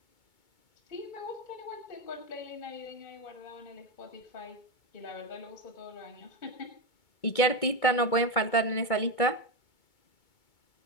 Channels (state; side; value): late; right; 2.2 ms